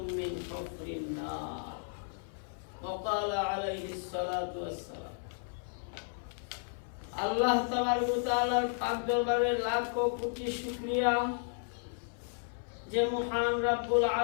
من حفر النار وقال عليه الصلاة والسلام আল্লাহ তাআলার পাক দরবারে লাখ কোটি শুকরিয়া যে মহান রব্বুল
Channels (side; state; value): right; silent; 55 dB below the other